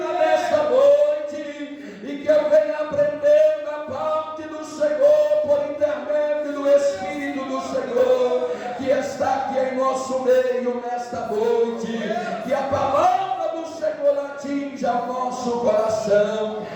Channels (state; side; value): identical; both; correlation 1.00